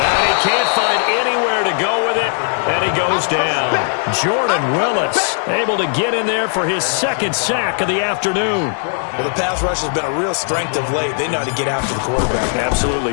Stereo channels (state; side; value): silent; right; 61 dB below the other